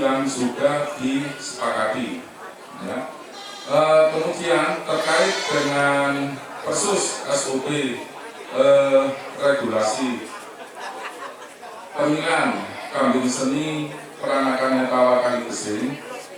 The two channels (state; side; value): identical; both; correlation 1.00